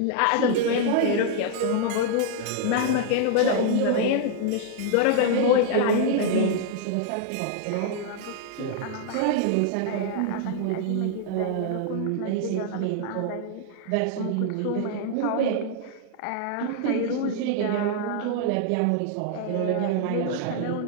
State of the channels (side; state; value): both; different; correlation 0.00